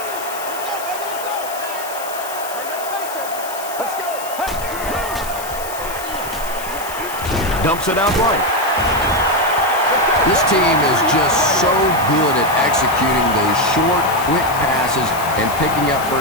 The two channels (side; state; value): left; noise; hiss, 12 dB below the sound